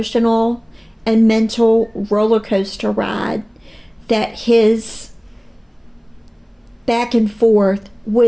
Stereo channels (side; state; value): both; identical; correlation 1.00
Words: and mental roller coaster ride that his back and forth